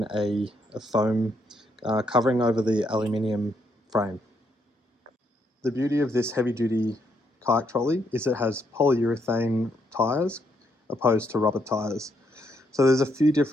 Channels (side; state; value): both; normal; correlation 0.75